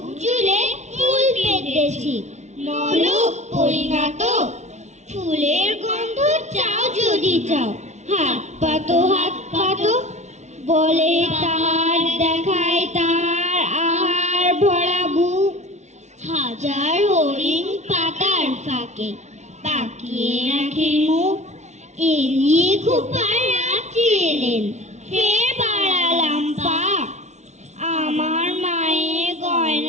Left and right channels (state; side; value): late; left; 0.33 ms